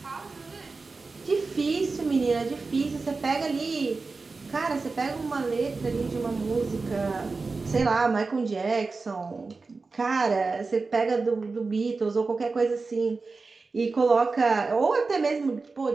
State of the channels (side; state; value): left; quieter; 4.1 dB